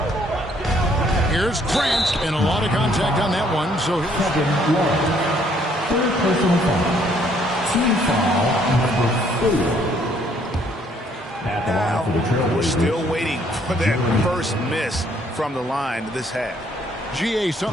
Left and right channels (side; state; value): both; normal; correlation 0.65